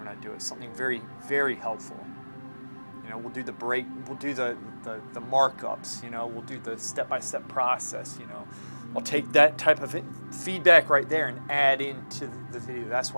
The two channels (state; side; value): inverted; both; correlation -1.00